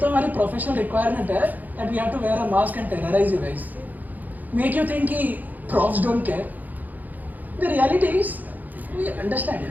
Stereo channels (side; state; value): left; late; 0.082 ms